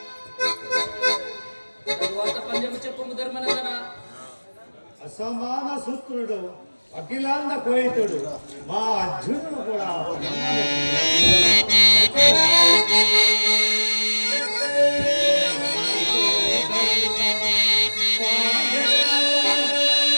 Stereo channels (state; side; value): inverted; both; correlation -1.00